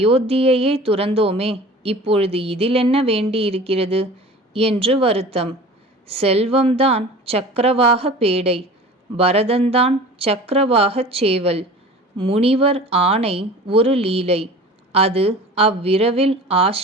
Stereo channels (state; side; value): normal; both; correlation 0.40